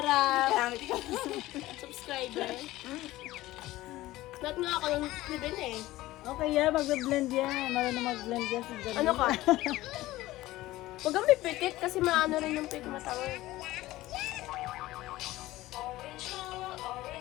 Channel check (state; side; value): quieter; right; 17.0 dB